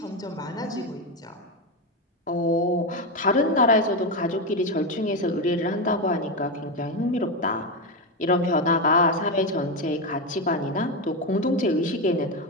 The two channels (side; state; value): both; normal; correlation 0.11